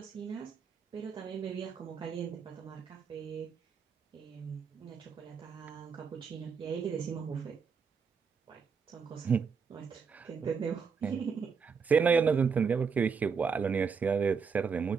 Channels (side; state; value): left; quieter; 5.8 dB